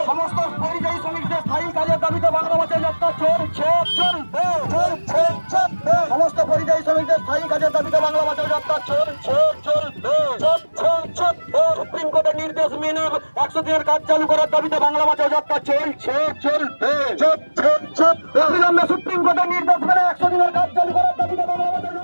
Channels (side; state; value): both; inverted; correlation -1.00